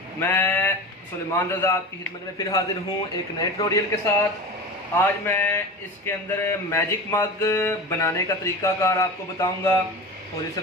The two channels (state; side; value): normal; both; correlation 0.31